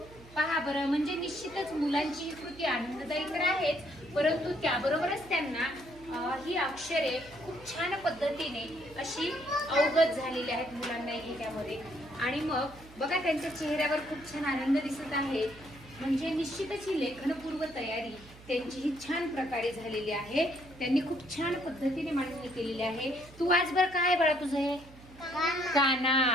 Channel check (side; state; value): right; noise; hum, 20 dB below the sound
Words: पहा बरं, म्हणजे निश्चितच मुलांची ही कृती आनंददायी तर आहेच, परंतु त्याबरोबरच त्यांना ही अक्षरे खूप छान पद्धतीने अशी अवगत झालेली आहेत मुलांना ह्याच्यामध्ये. आणि मग बघा त्यांच्या चेहऱ्यावर खूप छान आनंद दिसत आहे. म्हणजे निश्चितच ही लेखनपूर्व तयारी त्यांची ही छान प्रकारे झालेली आहे. त्यांनी खूप छान पद्धतीने मांडणी केलेली आहे. तू आज बरं काय बाळा तुझं हे?